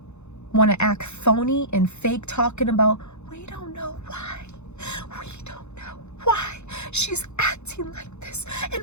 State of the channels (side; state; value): right; late; 0.82 ms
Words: want to act phony and fake, talking about, we don't know why. We don't know why she's acting like this and